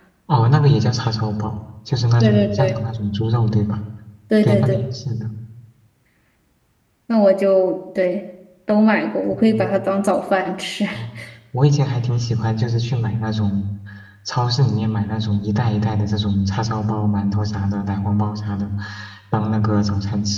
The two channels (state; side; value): identical; both; correlation 1.00